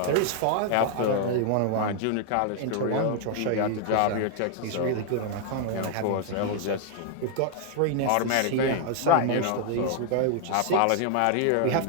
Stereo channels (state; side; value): different; both; correlation 0.00